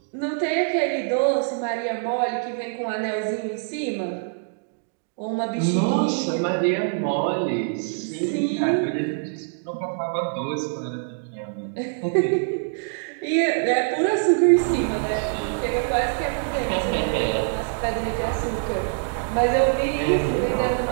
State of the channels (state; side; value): silent; left; 62 dB below the other